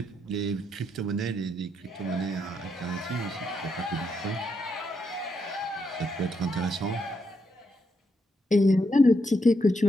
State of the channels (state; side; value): normal; both; correlation 0.80